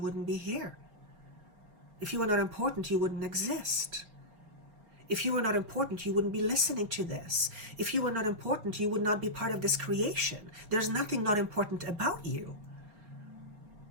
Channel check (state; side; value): late; left; 4.7 ms